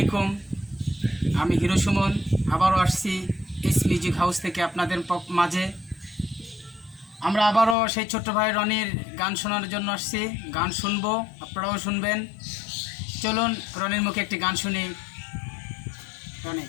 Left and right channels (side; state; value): right; drops out; at 7.8 s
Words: আমি হিরো সুমন আবারও আসছি এস মিউজিক হাউস থেকে আপনাদের মাঝে। আমরা আবারও সেই ছোট্ট ভাই রনির গান শোনার জন্য আসছি। গান শুনবো, আপনারাও শুনবেন। চলুন রনির মুখে একটি গান শুনি। রনি,